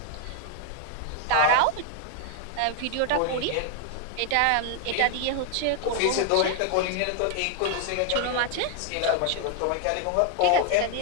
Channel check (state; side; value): different; both; correlation 0.00